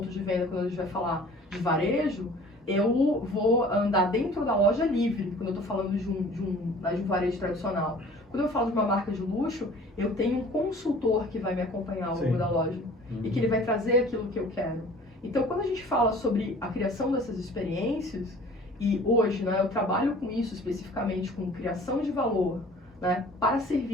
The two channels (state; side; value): normal; both; correlation 0.48